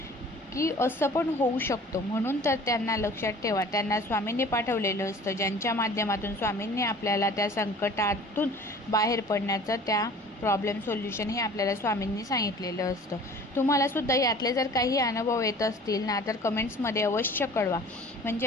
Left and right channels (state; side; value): normal; both; correlation 0.46